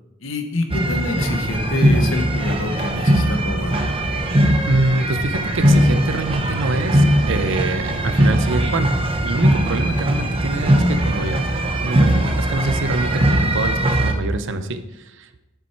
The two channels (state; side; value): normal; both; correlation 0.74